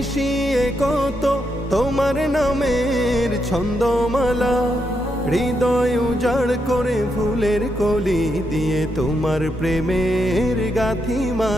কত তোমার নামের ছন্দমালা, হৃদয় উজাড় করে ফুলের কলি দিয়ে তোমার প্রেমের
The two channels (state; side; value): normal; both; correlation 0.82